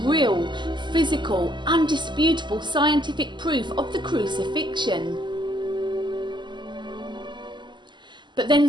real, physical, undisputable scientific proof of the crucifixion. But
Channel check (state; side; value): late; left; 0.22 ms